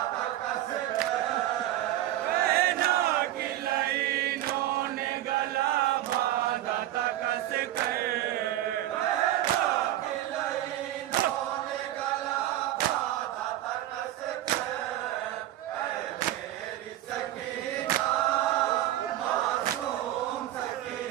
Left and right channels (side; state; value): left; quieter; 13.8 dB